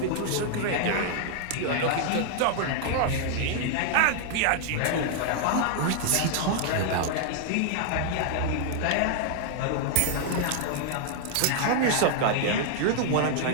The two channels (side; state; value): both; different; correlation 0.00